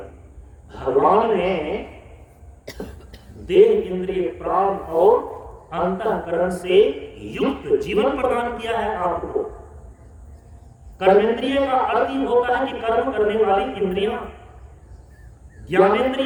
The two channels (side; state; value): both; identical; correlation 1.00